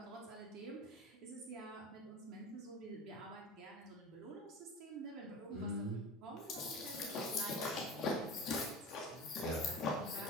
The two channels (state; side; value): normal; both; correlation 0.34